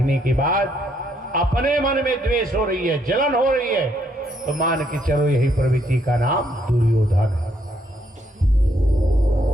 के बाद अपने मन में द्वेष हो रही है, जलन हो रही है, तो मान के चलो यही प्रवृत्ति का नाम दुर्योधन है।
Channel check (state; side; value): normal; both; correlation 0.72